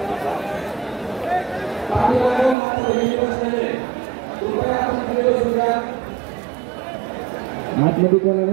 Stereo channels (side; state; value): left; drops out; at 2.6 s